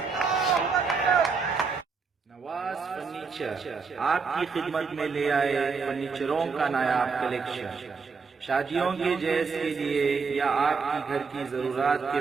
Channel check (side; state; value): left; quieter; 5.1 dB